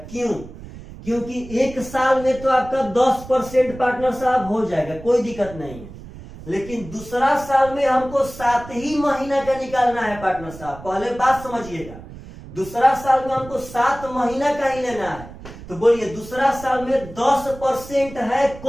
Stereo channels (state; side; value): noise; right; rumble, 15 dB below the sound